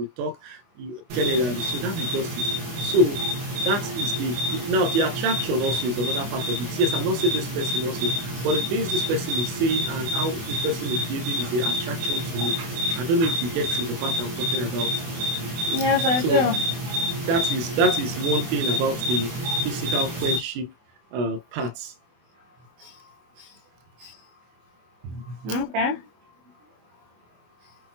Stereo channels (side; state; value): left; late; 24 ms